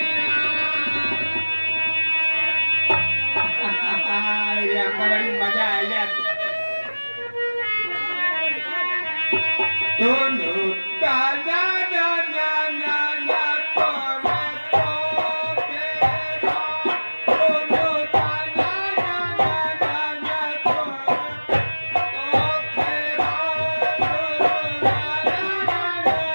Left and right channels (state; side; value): inverted; both; correlation -1.00